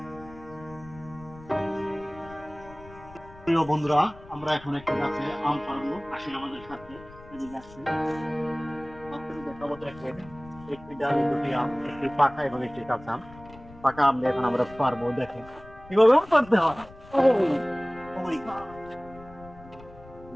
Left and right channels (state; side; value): noise; left; rumble, 20 dB below the sound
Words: বন্ধুরা, আমরা এখন একটি গাছে আম পাড়বো। আসেন আমাদের সাথে। এদিকে আসেন। আপনাদের দেখাবো দেখেন, একটি ডালে দুটি আম, একটি পাকা এবং একটি কাঁচা আম। পাকা আম দিয়ে এখন আমরা পারবো। দেখেন কিভাবে আম পারতে হয়। Oh my God!